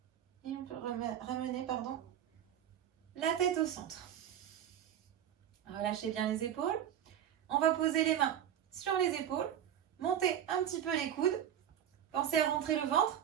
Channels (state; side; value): quieter; left; 10.1 dB